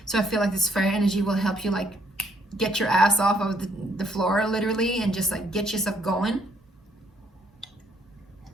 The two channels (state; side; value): normal; both; correlation 0.68